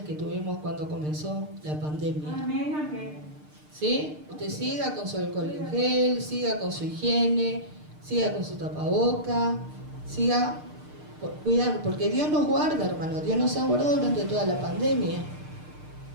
tuvimos cuando comenzó la pandemia. Amén, amén. ¿Sí? Usted siga con su alcohol en gel, siga con su higiene, siga con su tapaboca, siga cuidando, porque Dios nos guarda, hermano, Dios nos ha guardado durante toda la pandemia.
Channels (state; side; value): late; left; 6.6 ms